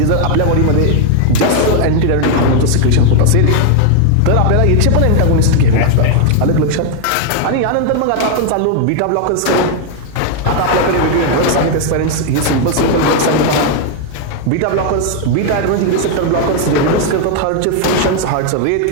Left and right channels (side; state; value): both; different; correlation 0.00